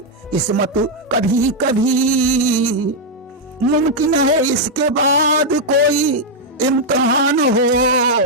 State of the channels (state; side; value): normal; both; correlation -0.02